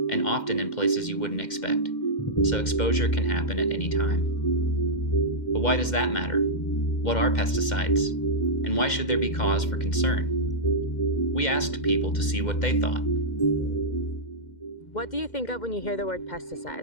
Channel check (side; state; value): right; late; 2.1 ms